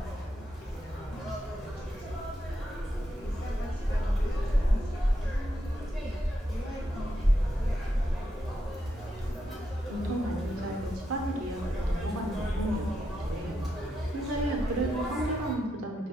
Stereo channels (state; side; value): normal; both; correlation 0.83